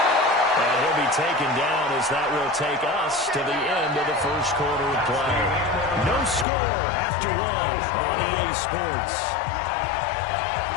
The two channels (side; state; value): right; drops out; at 6.5 s